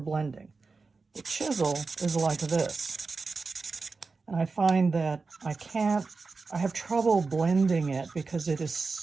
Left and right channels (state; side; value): quieter; left; 4.2 dB